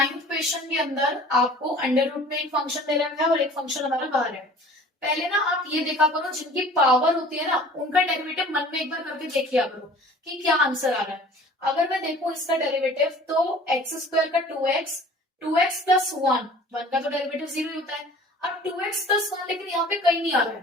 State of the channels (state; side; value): normal; both; correlation 0.47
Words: क्वेश्चन के अंदर आपको अंडर रूट में एक फंक्शन दे रखा है और एक फंक्शन हमारा बाहर है। पहले ना आप ये देखा करो, जिनकी पावर होती है ना उनका डेरिवेटिव मन में एक बार करके देख लिया करो कि क्या आंसर आ रहा है। अगर मैं देखूं इसका डेरिवेटिव तो एक्स स्क्वायर का 2x प्लस 1 का तो डेरिवेटिव 0 ही होता है। अब 2x प्लस 1 लेकिन यहाँ पे कहीं नहीं आ रहा